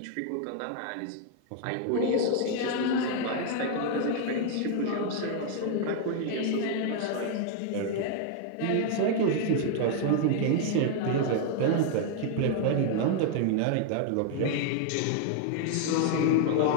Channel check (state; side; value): different; both; correlation 0.00